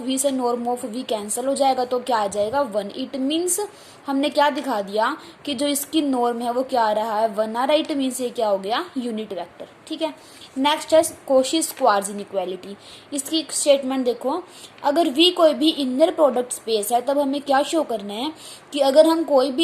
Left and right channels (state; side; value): identical; both; correlation 1.00